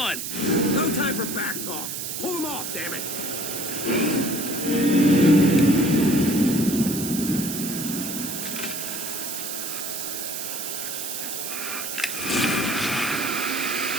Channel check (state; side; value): noise; right; hiss, 5 dB below the sound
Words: No time for back talk. Pull them off, damn it.